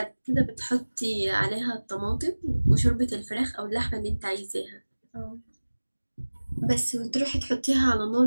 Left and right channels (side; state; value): both; inverted; correlation -1.00